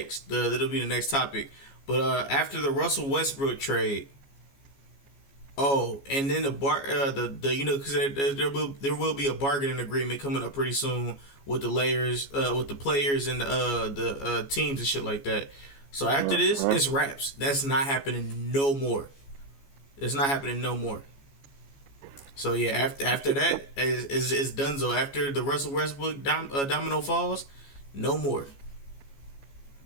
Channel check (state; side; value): late; right; 14 ms